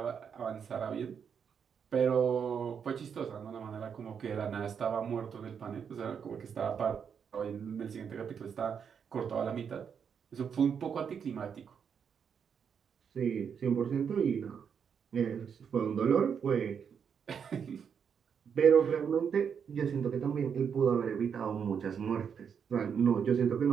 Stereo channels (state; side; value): quieter; left; 7.1 dB